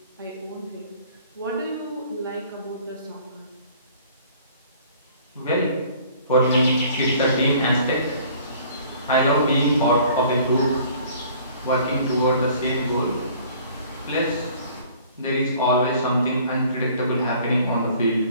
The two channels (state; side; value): inverted; both; correlation -0.53